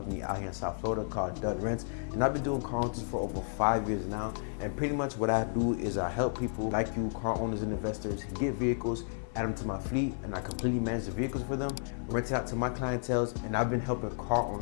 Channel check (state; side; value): silent; right; 56 dB below the other